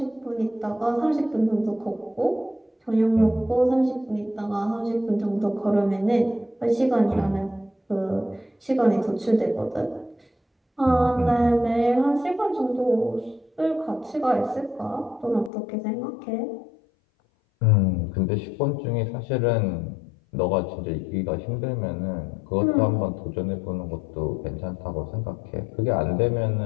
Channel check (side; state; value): right; drops out; at 15.5 s